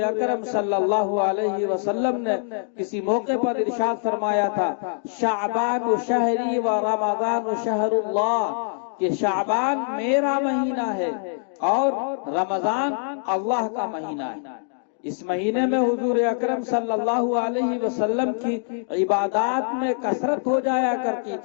اکرم صلی اللہ علیہ وسلم نے کسی موقع پر ارشاد فرمایا تھا، شعبان شہری و رمضان شہر اللہ، کہ شعبان میرا مہینہ ہے اور رمضان اللہ کا مہینہ ہے۔ اس مہینے میں حضور اکرم صلی اللہ علیہ وسلم کی عبادات میں کثرت ہو جایا کرتی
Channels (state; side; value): silent; right; digital silence